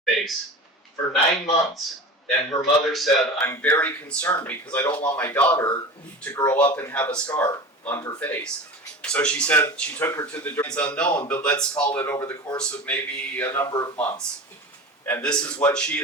face for 9 months. And her mother said, I'm very concerned because I don't want my daughter to grow up and have a scar on her face. So she said she took her to the it's unknown, but let's call it over the course of maybe a number of months. And this is what she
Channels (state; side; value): normal; both; correlation 0.33